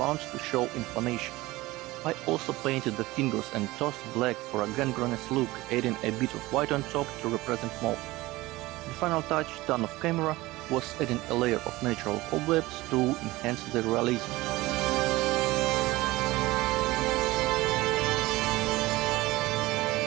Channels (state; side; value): quieter; left; 19.5 dB